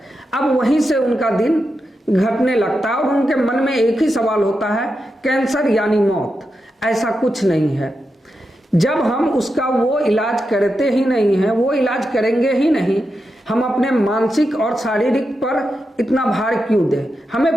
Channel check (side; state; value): both; normal; correlation 0.88